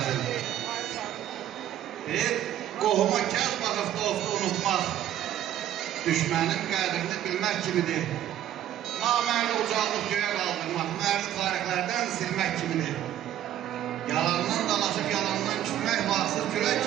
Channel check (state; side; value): quieter; left; 11.7 dB